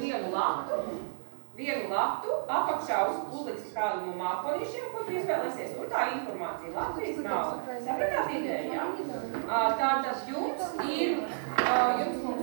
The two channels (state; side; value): silent; left; digital silence